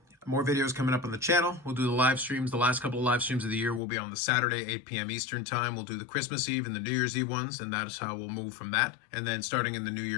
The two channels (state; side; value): drops out; right; at 3.8 s